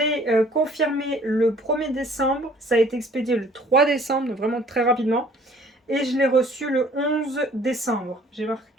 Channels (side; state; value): both; normal; correlation 0.55